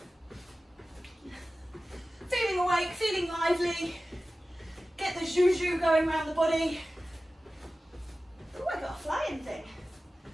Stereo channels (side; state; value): both; normal; correlation 0.95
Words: feeling awake, feeling lively. Get the zhu-zhu going around the body. Oh, I got a flying thing.